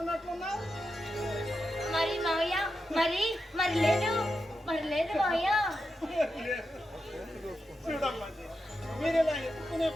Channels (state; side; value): normal; both; correlation 0.88